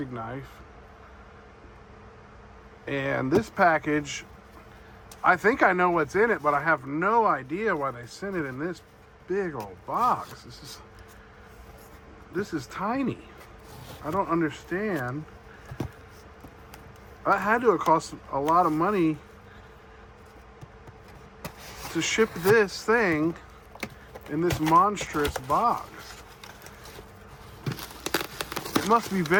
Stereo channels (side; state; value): both; identical; correlation 1.00